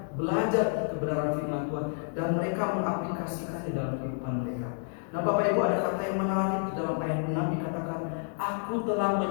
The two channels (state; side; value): silent; right; 58 dB below the other